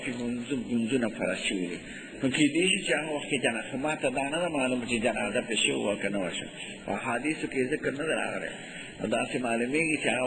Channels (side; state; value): both; identical; correlation 1.00